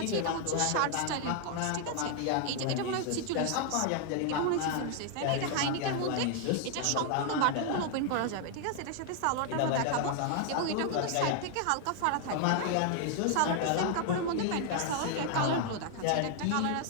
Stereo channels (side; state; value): both; different; correlation 0.00